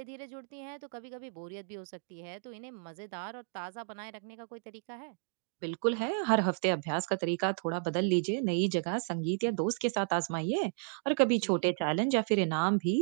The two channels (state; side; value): silent; left; digital silence